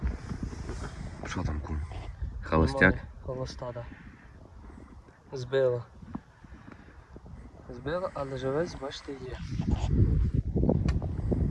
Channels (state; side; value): identical; both; correlation 1.00